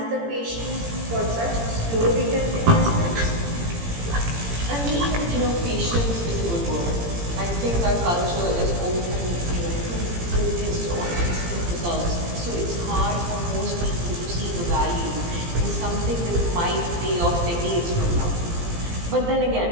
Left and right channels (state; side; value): late; left; 17 ms